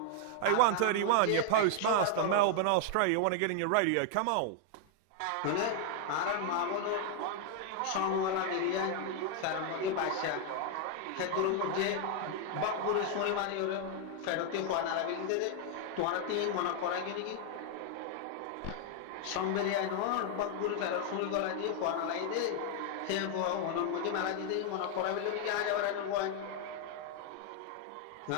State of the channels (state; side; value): different; both; correlation 0.00